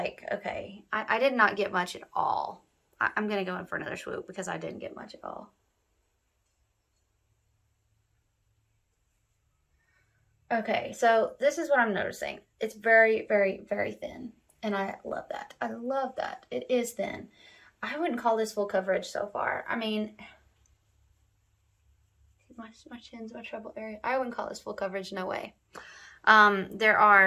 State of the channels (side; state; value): both; identical; correlation 1.00